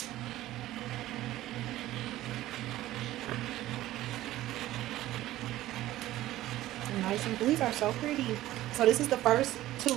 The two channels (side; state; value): left; quieter; 15.3 dB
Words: Nice, and these are so pretty. So this is the first